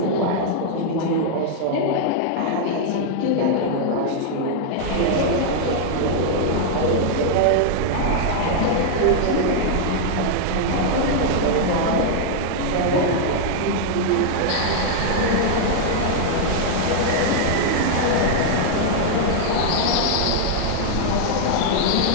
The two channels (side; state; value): both; different; correlation -0.01